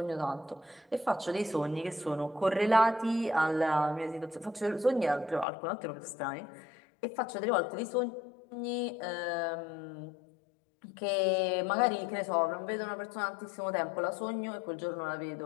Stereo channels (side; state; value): right; drops out; at 5.5 s